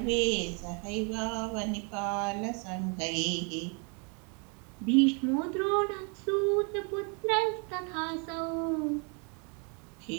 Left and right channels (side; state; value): left; quieter; 35.5 dB